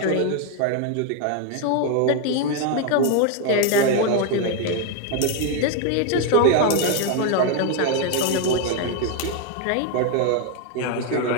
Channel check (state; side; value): different; both; correlation 0.01